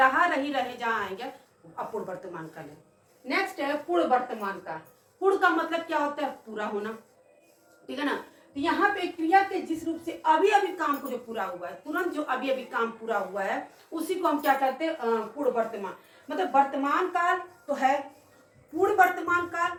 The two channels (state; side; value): identical; both; correlation 1.00